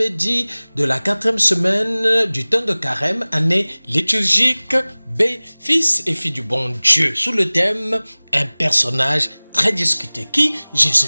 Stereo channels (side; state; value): both; inverted; correlation -1.00